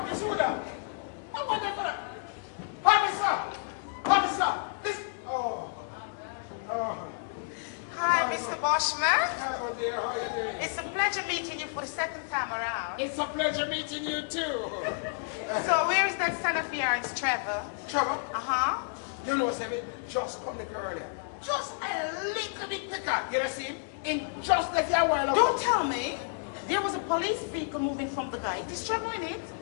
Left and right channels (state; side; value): silent; right; digital silence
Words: Hi, Mr. Bashment. Hello, dear. How are you doing? It's a pleasure meeting you for the second time around. It's a pleasure meeting you too. So where is that son of yours, Trevor? Trevor, Uh-huh. you know, Sammy, just come the girl earlier. Just a little bit quicker. You know, see him? In just like a while ago. Don't tell me. There was a police vehicle moving from the guy. Is Trevor in it?